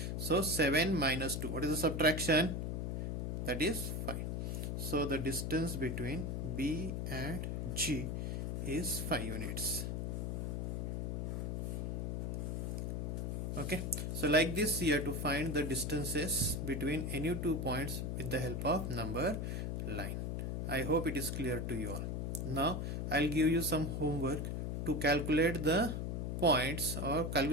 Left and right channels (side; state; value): left; noise; hum, 1 dB below the sound